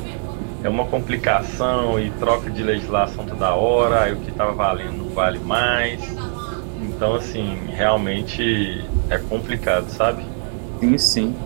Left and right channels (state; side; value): silent; left; 65 dB below the other